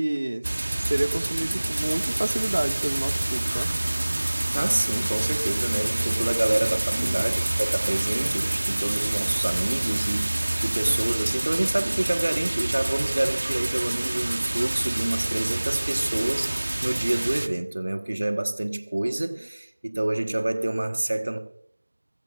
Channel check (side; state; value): both; inverted; correlation -1.00